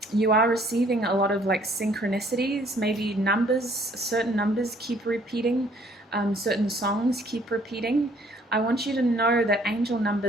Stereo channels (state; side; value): normal; both; correlation 0.61